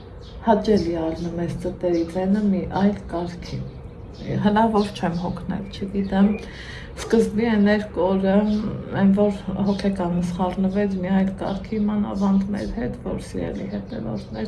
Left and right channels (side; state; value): both; identical; correlation 1.00